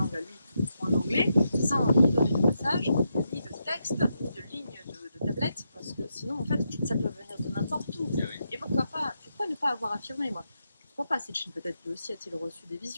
à lui, en anglais, sans ni donner de passage, ni de texte, ni de ligne de tablette, parce que sinon, en fait, ça peut venir de n'importe où. Et pourquoi ne pas avoir affirmé, moi? Pourquoi pas Sitchin, peut-être que aussi a-t-il reçu des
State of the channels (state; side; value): inverted; both; correlation -0.84